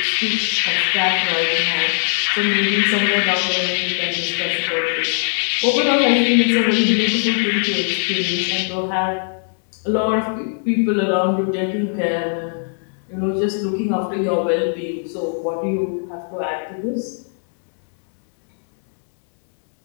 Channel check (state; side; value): silent; right; digital silence